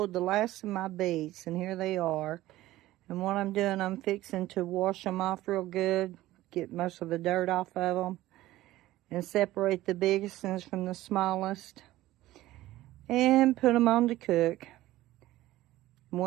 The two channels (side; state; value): left; quieter; 16.1 dB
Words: the last of my beets, and here they are. And what I'm doing, I'm fixing to wash them off real good, get most of the dirt off of them, and separate the biggest ones from the smallest, and put them on to cook. And